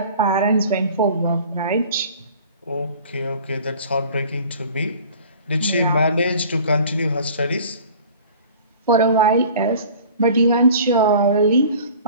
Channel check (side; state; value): both; inverted; correlation -0.46